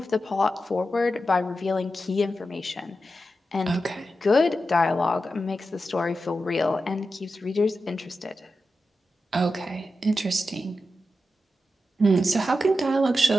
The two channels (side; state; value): both; normal; correlation 0.90